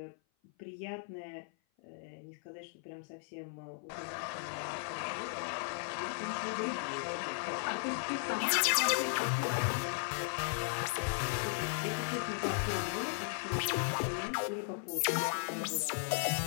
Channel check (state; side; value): silent; right; 54 dB below the other